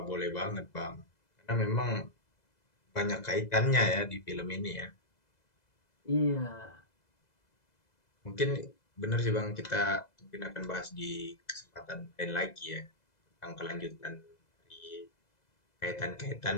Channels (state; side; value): late; right; 2.0 ms